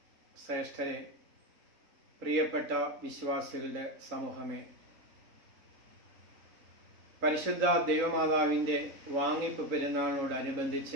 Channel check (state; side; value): late; left; 3.7 ms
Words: ശ്രേഷ്ഠരെ, പ്രിയപ്പെട്ട വിശ്വാസികളുടെ സമൂഹമേ, പരിശുദ്ധ ദൈവമാതാവിൻ്റെ വാങ്ങിപ്പ്